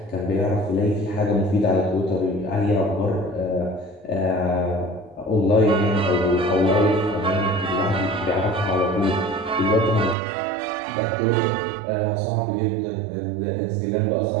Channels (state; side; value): drops out; left; at 10.2 s